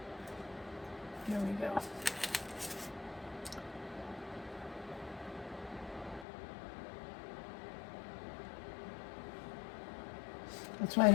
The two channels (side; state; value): right; drops out; at 6.2 s